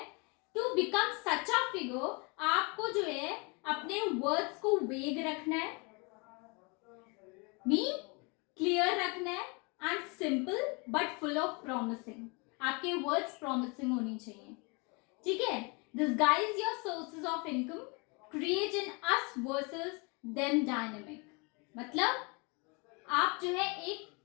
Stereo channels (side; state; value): right; quieter; 30.7 dB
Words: to become such a figure, आपको जो है अपने वर्ड्स को वेग रखना है, मीन क्लियर रखना है, and simple but full of promising. आपके वर्ड्स प्रॉमिसिंग होनी चाहिए. ठीक है. Disguise your sources of income, create in us versus them dynamic. मतलब आप जो है एक